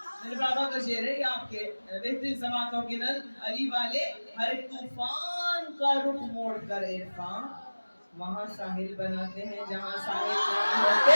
میرے بابا کا شعر ہے یہ آپ کے بہترین سماعتوں کے نل علی والے، ہر ایک طوفان کا رخ موڑ کر عرفان وہاں ساحل بناتے ہیں جہاں ساحل نہیں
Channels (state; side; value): inverted; both; correlation -1.00